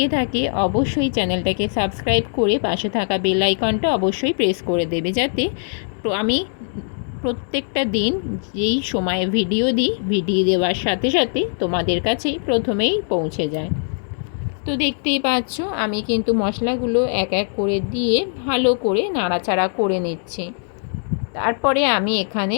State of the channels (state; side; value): silent; right; 65 dB below the other